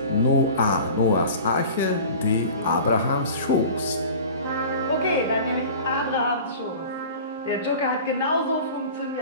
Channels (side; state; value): both; inverted; correlation -0.39